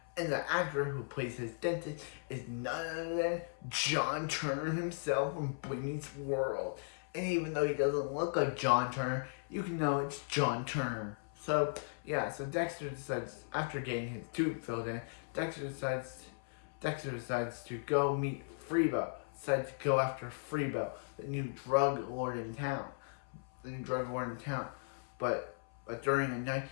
And the actor who plays his dentist is none other than John Turner himself from Boy Meets World. And even though he doesn't look like John Turner, you can know it's John Turner. So Dexter decides, after getting his tooth filled in, Dexter decides to go meet Freebo. Decides to go after Freebo, the new drug lord in town. But during the night,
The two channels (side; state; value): right; silent; 53 dB below the other